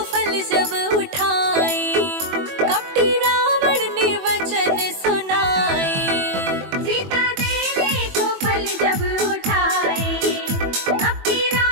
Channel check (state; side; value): late; left; 21 ms